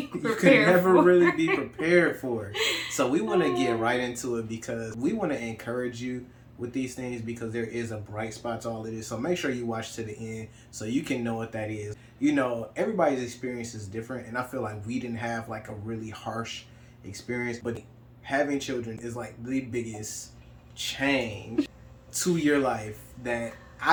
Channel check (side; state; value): both; identical; correlation 1.00